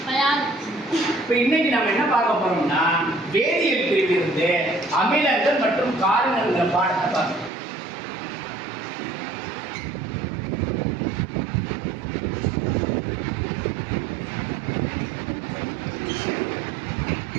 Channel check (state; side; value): drops out; left; at 7.5 s